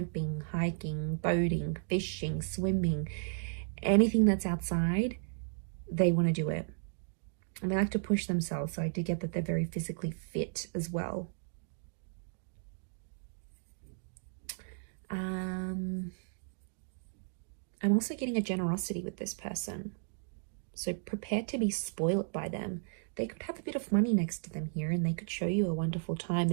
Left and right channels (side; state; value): left; silent; digital silence